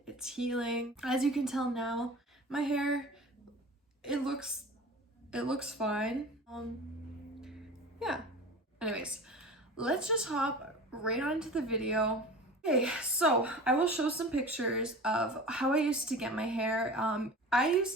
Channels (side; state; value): both; normal; correlation 0.36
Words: its healing. As you can tell now, my hair, it looks fine. Yeah. Anyways, let's just hop right on into the video. Okay, so I will show some pictures of how I used to get my hair. I